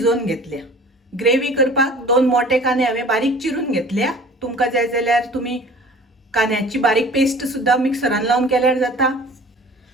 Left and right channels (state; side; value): normal; both; correlation 0.45